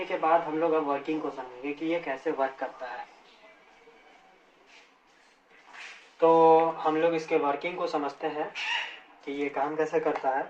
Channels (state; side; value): identical; both; correlation 1.00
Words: के बाद हम लोग अब वर्किंग को समझेंगे कि ये कैसे वर्क करता है। तो हम लोग इसके वर्किंग को समझते हैं कि ये काम कैसे करता है।